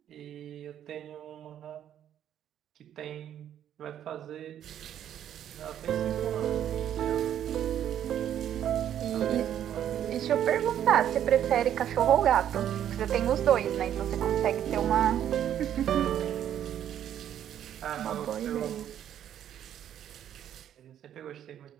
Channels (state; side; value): quieter; left; 10.4 dB